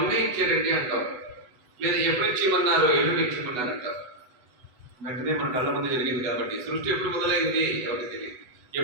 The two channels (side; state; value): left; late; 8.1 ms